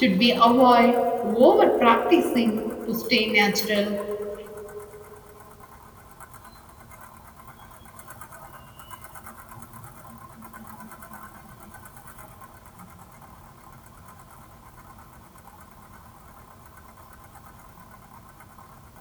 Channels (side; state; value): both; identical; correlation 1.00